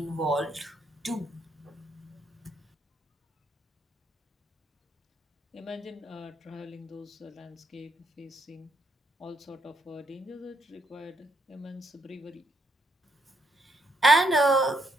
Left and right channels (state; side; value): normal; both; correlation 0.75